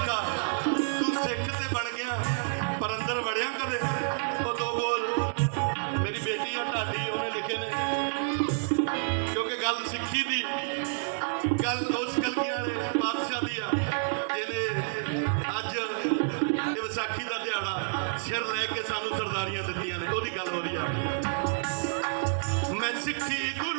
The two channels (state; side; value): silent; left; digital silence